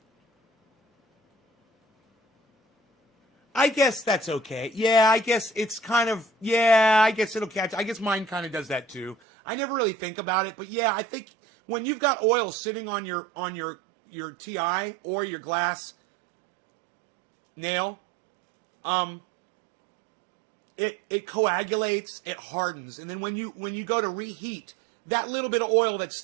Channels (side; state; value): left; drops out; at 9.2 s